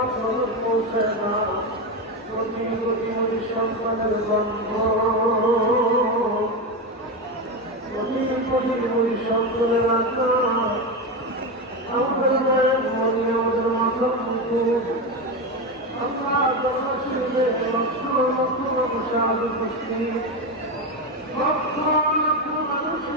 পৌঁছে না কোটি কোটি সন্তানের গন্ধ, কোটি কোটি সন্তানের আত্মা আমাদের মায়ের মনে আমাদের মাথার মুখে আল্লাহ জন্মশীলে লক্ষ লক্ষ মানুষ আজ উপস্থিত, লক্ষ লক্ষ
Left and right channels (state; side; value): normal; both; correlation 0.14